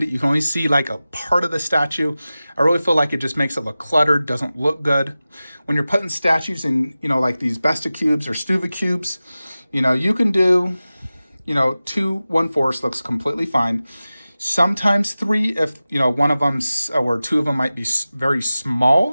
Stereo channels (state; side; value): inverted; both; correlation -0.96